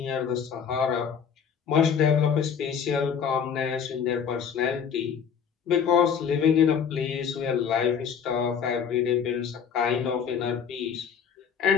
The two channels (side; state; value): right; quieter; 7.2 dB